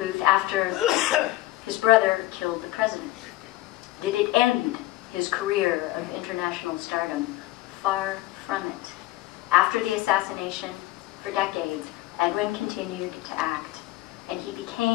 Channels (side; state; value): right; quieter; 17.6 dB